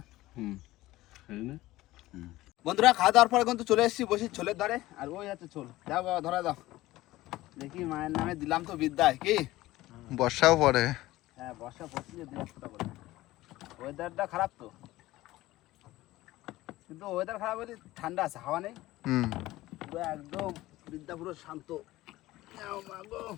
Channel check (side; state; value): right; quieter; 17.3 dB